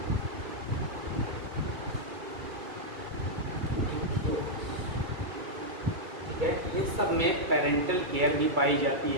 ठीक है। इन सब में पेरेंटल केयर भी पाई जाती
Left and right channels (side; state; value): left; late; 2.3 ms